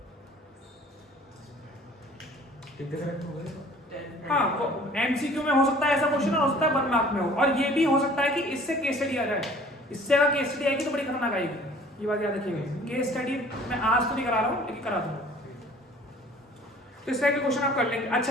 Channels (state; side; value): normal; both; correlation 0.51